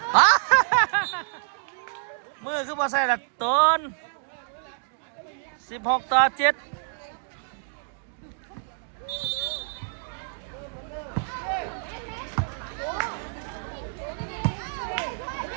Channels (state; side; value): silent; left; digital silence